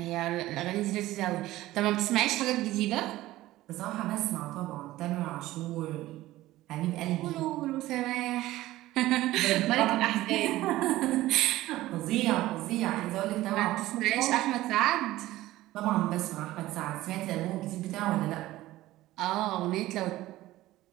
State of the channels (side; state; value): left; quieter; 16.4 dB